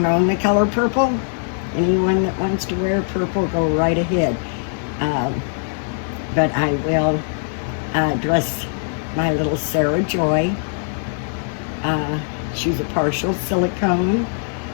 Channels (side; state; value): right; silent; digital silence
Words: own the color purple. Anyone that wants to wear purple, go right ahead. But I will dress my little Sarah Joy. She's a partial silicone,